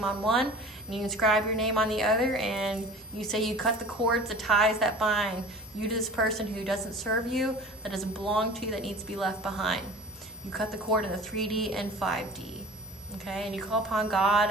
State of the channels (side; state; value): both; normal; correlation 0.41